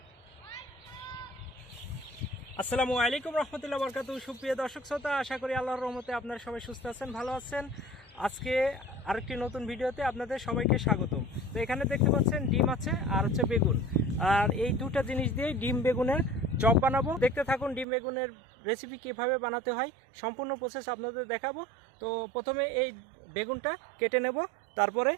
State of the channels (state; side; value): drops out; left; at 17.9 s